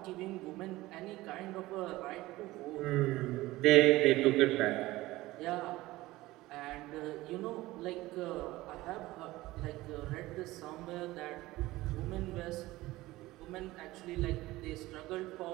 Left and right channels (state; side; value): quieter; left; 18.3 dB